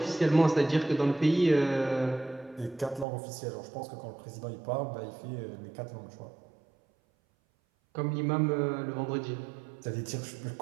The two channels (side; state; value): left; drops out; at 3.1 s